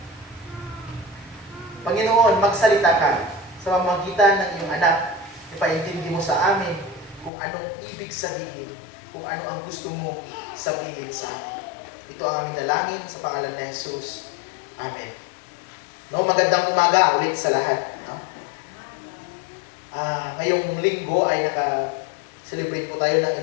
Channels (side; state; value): right; drops out; at 7.3 s